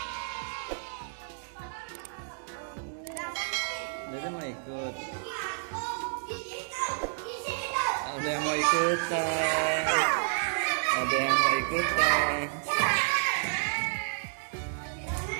Dede mau ikut. Ada yang mau ikutan. Ada yang mau ikutan.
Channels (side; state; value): left; silent; digital silence